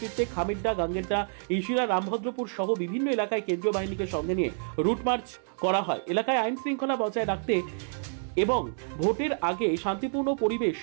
খামিরডা, গাঙ্গেরডা, ইশিরা, রামভদ্রপুর সহ বিভিন্ন এলাকায় কেন্দ্রীয় বাহিনীকে সঙ্গে নিয়ে রুট মার্চ করা হয়। এলাকায় আইন শৃঙ্খলা বজায় রাখতে এবং ভোটের আগে শান্তিপূর্ণ পরিবেশ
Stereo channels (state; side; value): silent; left; 59 dB below the other